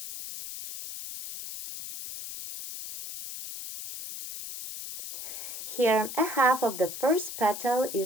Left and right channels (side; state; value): left; noise; hiss, 9 dB below the sound